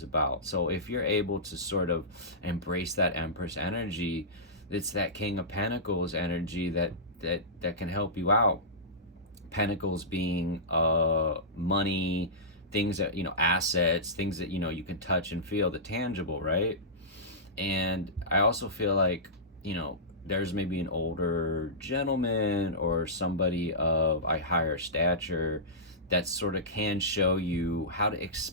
about. So if you're able to sort of embrace that Empress energy, it's that King of Pentacles energy that can help you out. Pentacles being money, things that, assets, things that, you can touch and feel, the tangible, right? And I also feel like, there's maybe an older gentleman or somebody of a higher stature that sort of can show you how to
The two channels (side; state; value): both; normal; correlation -0.18